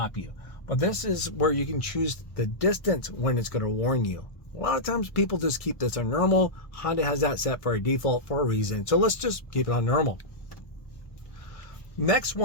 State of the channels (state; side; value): late; right; 1.6 ms